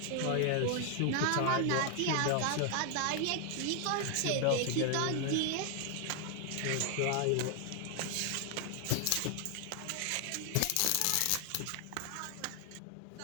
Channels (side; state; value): both; different; correlation 0.00